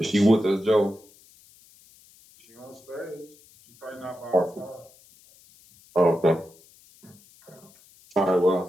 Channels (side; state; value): left; noise; hiss, 27 dB below the sound